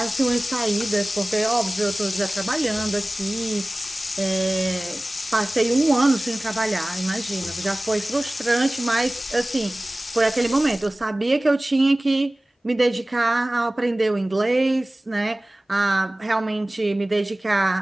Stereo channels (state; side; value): normal; both; correlation 0.98